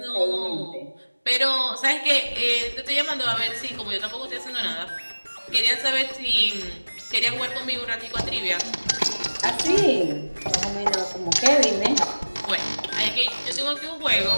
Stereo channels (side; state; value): both; inverted; correlation -1.00